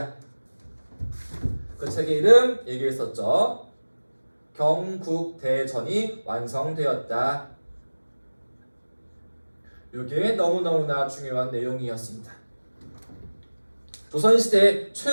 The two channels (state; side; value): inverted; both; correlation -1.00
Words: 그 책의 이름 얘기했었죠. 경국대전이 완성되었다. 이게 너무너무나 중요한 내용이었습니다. 조선시대